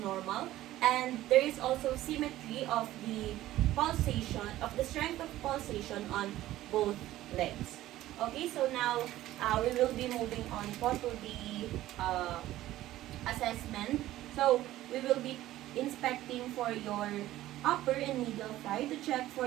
And there is also symmetry of the pulsation, of the strength of pulsation on both legs. Okay, so now we will be moving on po to the assessment. So, we will be inspecting for your upper and middle thigh to check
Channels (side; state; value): left; quieter; 14.9 dB